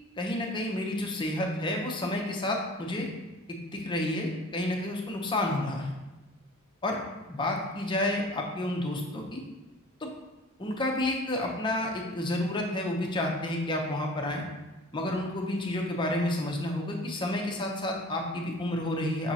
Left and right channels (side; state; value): both; normal; correlation 0.45